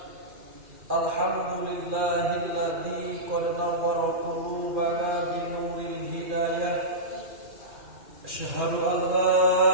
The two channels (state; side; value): late; left; 2.4 ms